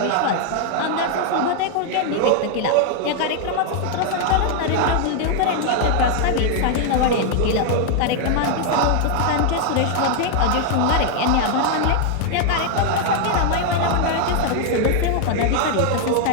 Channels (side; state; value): both; different; correlation 0.00